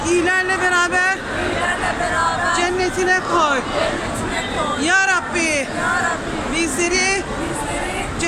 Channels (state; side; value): identical; both; correlation 1.00